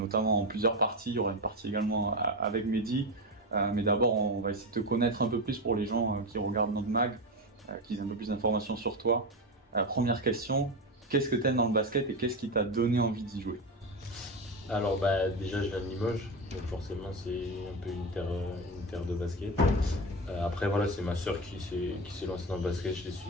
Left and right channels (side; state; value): both; normal; correlation 0.18